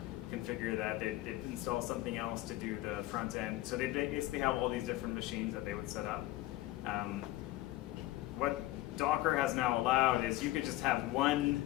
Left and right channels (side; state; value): right; quieter; 16.9 dB